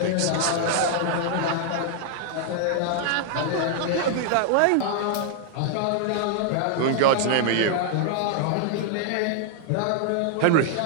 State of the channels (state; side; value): different; both; correlation -0.01